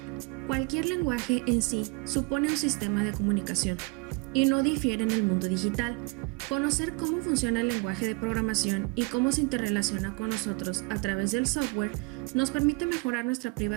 Cualquier lenguaje en sí supone un sistema de comunicación y no difiere en el mundo digital. Conocer cómo funciona el lenguaje de programación y cómo se interrelaciona con nosotros a través del software nos permite mejorar nuestra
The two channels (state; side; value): quieter; left; 29.4 dB